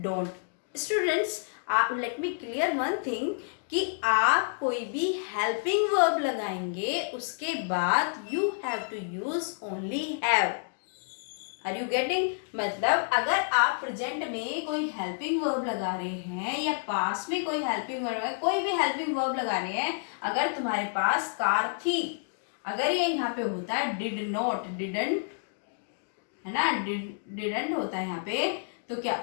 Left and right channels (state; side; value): silent; right; digital silence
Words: Students, let me clear one thing कि आप कोई भी हेल्पिंग वर्ब लगाएंगे उसके बाद you have to use only have. Are you getting? मतलब अगर आप प्रेजेंट में कोई हेल्पिंग वर्ब लगा रहे हैं या पास में कोई हेल्पिंग वर्ब, कोई भी हेल्पिंग वर्ब लगा रहे हैं, अगर तुम्हारे पास कार थी, अगर ये यहाँ पे होता है डिड नॉट, डिडंट, है ना, डिडंट होता है यहाँ पे, तो क्या